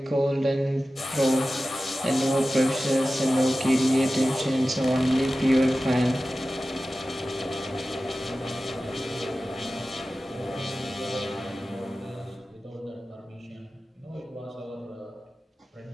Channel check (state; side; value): normal; both; correlation 0.95